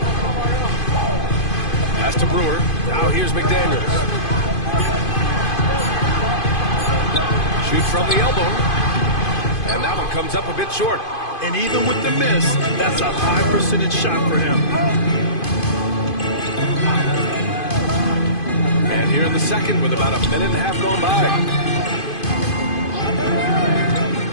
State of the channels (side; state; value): right; late; 2.5 ms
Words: Pass to Brewer. Now here's McDaniels. Shoot from the elbow. And that one comes up a bit short. And even with the miss, that's a high percentage shot for him. And here in the second with about a minute and a half gone by.